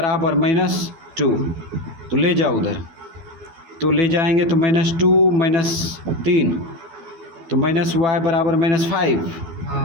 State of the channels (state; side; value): late; left; 12 ms